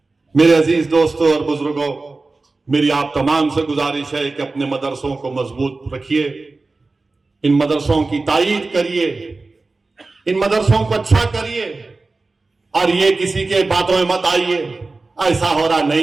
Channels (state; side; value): quieter; left; 3.5 dB